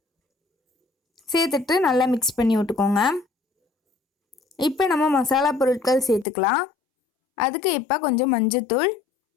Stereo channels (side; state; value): right; drops out; at 6.2 s